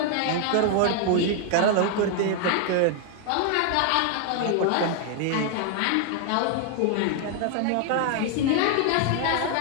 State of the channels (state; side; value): different; both; correlation 0.00